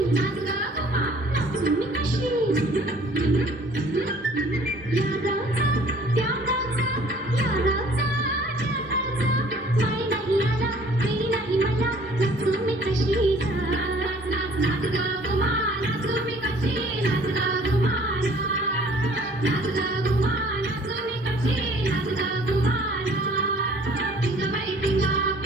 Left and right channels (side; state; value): both; normal; correlation 0.54